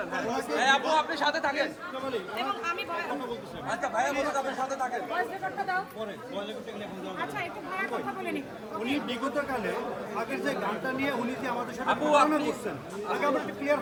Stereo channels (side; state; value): both; identical; correlation 1.00